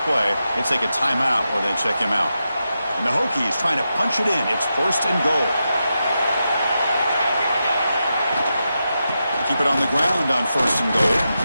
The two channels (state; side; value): inverted; both; correlation -0.88